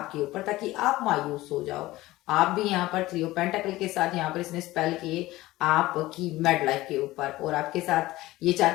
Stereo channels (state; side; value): quieter; right; 17.8 dB